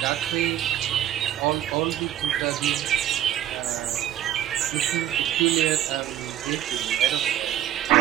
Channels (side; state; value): left; quieter; 11.8 dB